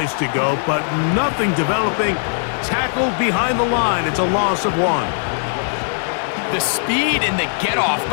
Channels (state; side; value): silent; right; digital silence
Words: to go, but nothing developing. Tackled behind the line. It's a loss of 1. The speed and the get-off